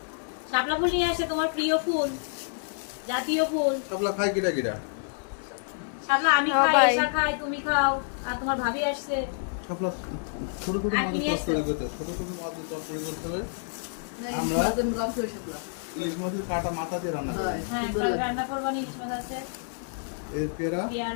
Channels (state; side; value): silent; right; 59 dB below the other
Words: শাপলা ফুল নিয়ে আসে, তোমার প্রিয় ফুল, জাতীয় ফুল। শাপলা খাই কিটা কিটা? শাপলা আমি হ্যাঁ, খাই, ভাই। এসা খাই, তুমি খাও, আর তোমার ভাবি আসছে। শাপলা ছোট ছোট আর মাছ কি নিয়ে তরকারি এসছো? করতে হবে, ছোট ছোট মাছ তরকারি করতে হবে। আমরা ইলিশ মাছের কাটা মাথা দিয়ে রান্না করি। হ্যাঁ, কাল রান্না করবো, ইলিশ মাছ আছে, এই পেয়ারা